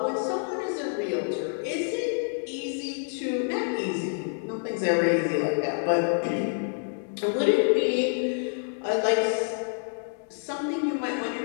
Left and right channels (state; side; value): silent; right; 60 dB below the other